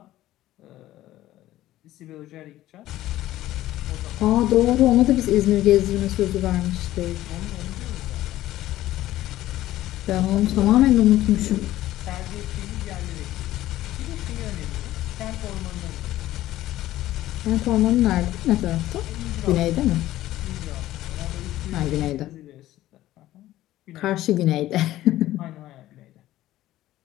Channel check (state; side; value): quieter; right; 14.8 dB